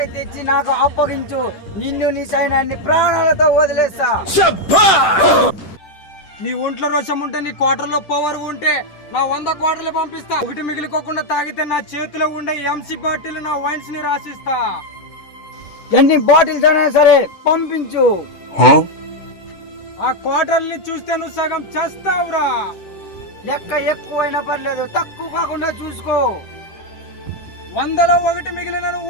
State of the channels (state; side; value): late; right; 10 ms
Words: తెచ్చి నాకు అప్పగించు, నిన్ను నీ సైన్యాన్ని ప్రాణాలతో వదిలేస్తా. నీ ఒంట్లో రోషం ఉంటే, నీ క్వార్టర్లో పవర్ ఉంటే నా 100 క్వార్టర్లు పంపిస్తా. ఒకటి మిగిలిపోకుండా తాగితే నా చేతిలో ఉండే ఎంసీ బాటిల్ నా వైన్స్ ని రాసిస్తా. ఎన్ని బాటిల్స్ అయినా సరే పంపించు. ఆ క్వార్టర్ని చూస్తే నువ్వు సగం చేస్తావురా. లెక్క ఎక్కువైనా పర్లేదు, తక్కువ కాకుండా చూసుకో. 100లో 1 మిగిలిన నువ్వు